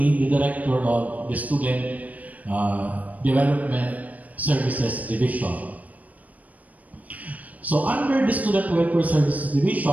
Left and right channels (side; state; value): left; late; 0.073 ms